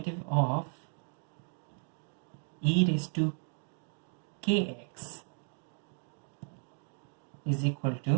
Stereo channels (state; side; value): silent; left; 55 dB below the other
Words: of e raised to kx is equal